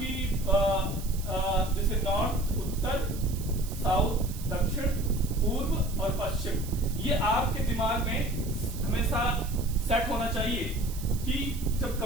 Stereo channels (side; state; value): right; noise; hiss, 14 dB below the sound